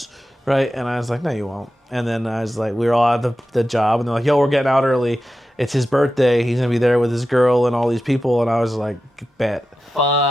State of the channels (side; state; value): both; normal; correlation 0.92